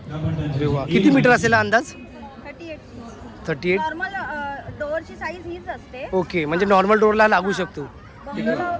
या पण त्यांच्या अरे वा, किती मीटर असेल हा अंदाज? 38. 38. नॉर्मल डोअरची साईज हीच असते. ओके, म्हणजे नॉर्मल डोअरला लागू शकतो. बंगलोला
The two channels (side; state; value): both; identical; correlation 1.00